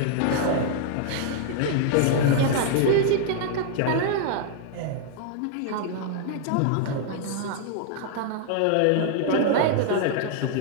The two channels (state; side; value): different; both; correlation 0.00